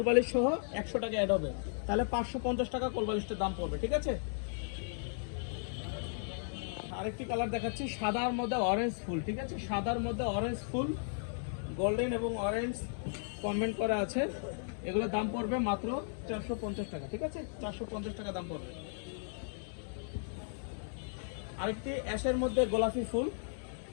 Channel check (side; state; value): right; silent; digital silence